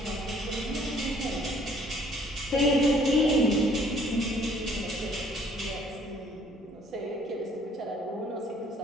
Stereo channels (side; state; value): both; normal; correlation 0.60